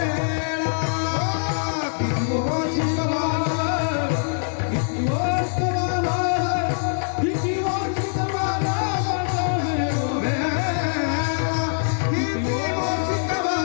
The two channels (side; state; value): right; silent; digital silence